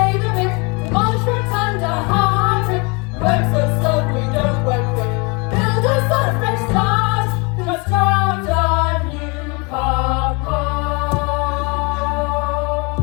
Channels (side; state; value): right; quieter; 30.3 dB